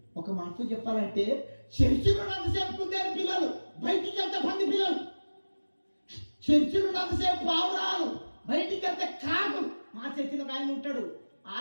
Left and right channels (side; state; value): both; inverted; correlation -1.00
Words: ఒక మాటతో చెప్పాలంటే చర్చిలో ఉన్నంతసేపు కుదేరు పిల్లలు, బయటికి వెళ్తే పంది పిల్లలు. చర్చిలో ఉన్నంతసేపు పావురాలు, బయటికి వెళ్తే కాకులు. మా చర్చిలో ఆయన ఉంటాడు,